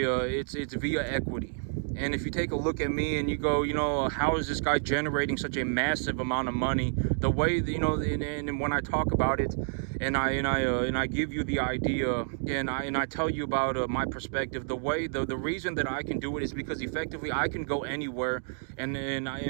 It's via equity. And if you take a look at me and you go, how is this guy generating such a massive amount of money? The way, and when I talk about it, and I give you the idea, and I tell you about my perspective, the reason that I can do it is because effectively I can go anywhere, and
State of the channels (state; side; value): silent; left; digital silence